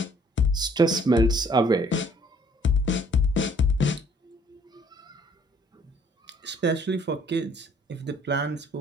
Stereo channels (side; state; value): both; normal; correlation 0.60